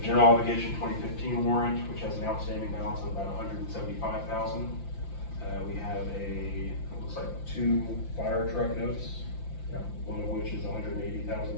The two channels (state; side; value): late; right; 5.8 ms